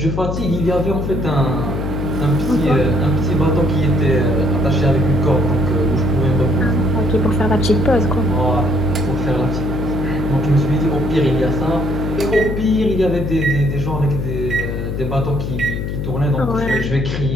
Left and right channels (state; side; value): noise; left; hum, 3 dB below the sound